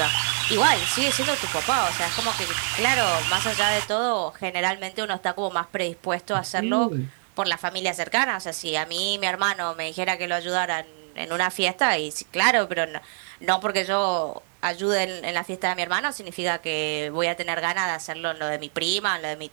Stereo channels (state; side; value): silent; left; digital silence